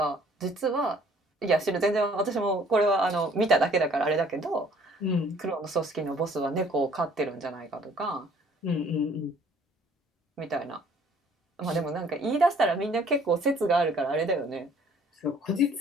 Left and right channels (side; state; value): both; normal; correlation 0.57